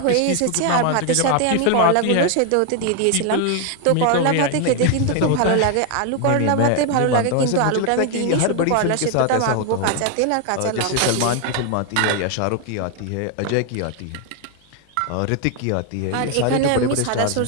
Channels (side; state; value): both; different; correlation 0.01